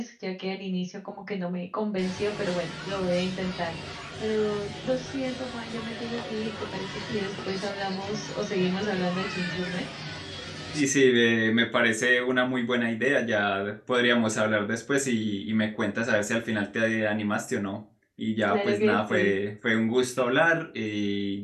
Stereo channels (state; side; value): identical; both; correlation 1.00